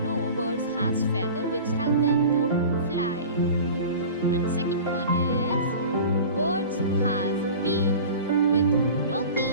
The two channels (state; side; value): inverted; both; correlation -0.37